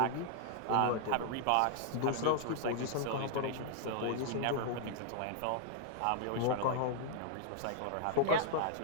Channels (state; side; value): different; both; correlation -0.01